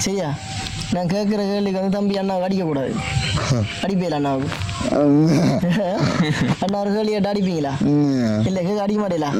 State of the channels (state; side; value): identical; both; correlation 1.00